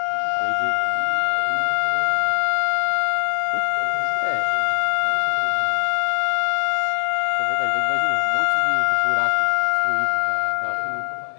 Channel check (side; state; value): right; silent; digital silence